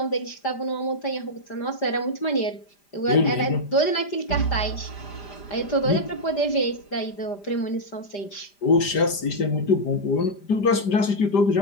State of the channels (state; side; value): late; right; 5.0 ms